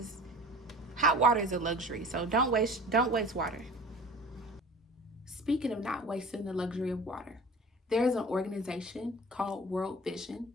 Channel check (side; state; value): both; normal; correlation 0.41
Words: hot water is a luxury. So don't waste water. Speaking of not wasting the luxury of water, there is an organization called World Vision.